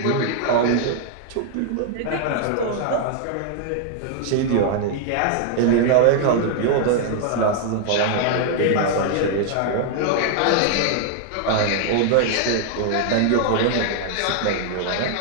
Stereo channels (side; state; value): both; different; correlation -0.01